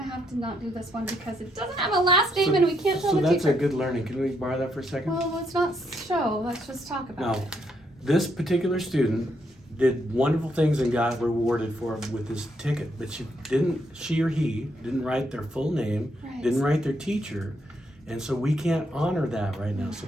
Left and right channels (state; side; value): normal; both; correlation 0.76